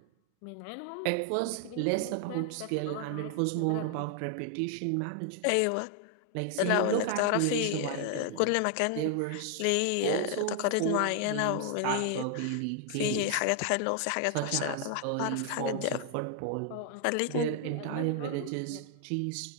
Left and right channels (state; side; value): different; both; correlation 0.00